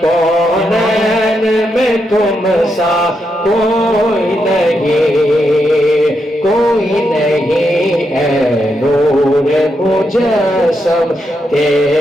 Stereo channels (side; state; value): both; normal; correlation 0.82